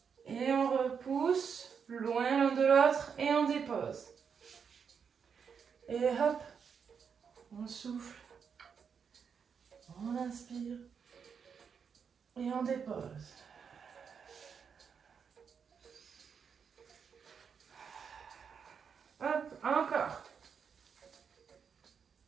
Et on repousse loin l'un de l'autre et on dépose. Et hop, on souffle. On inspire. Et on dépose. Hop, encore.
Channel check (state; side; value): quieter; left; 6.6 dB